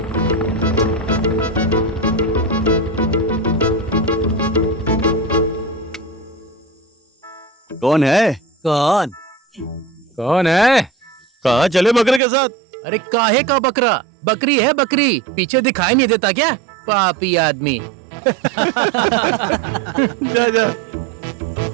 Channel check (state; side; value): drops out; left; at 12.2 s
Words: कौन है? कौन? कौन है? कहाँ चले बकरे के साथ? अरे काहे का बकरा? बकरी है बकरी, पीछे दिखाई नहीं देता क्या? पापी आदमी। जा जा।